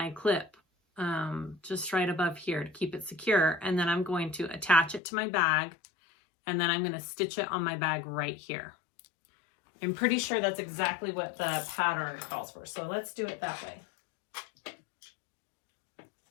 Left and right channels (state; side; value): drops out; right; at 5.0 s